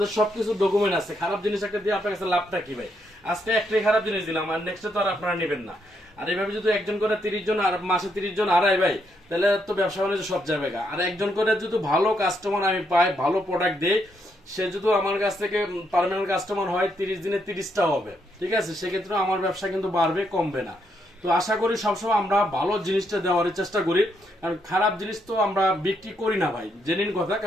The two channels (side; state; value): both; normal; correlation 0.77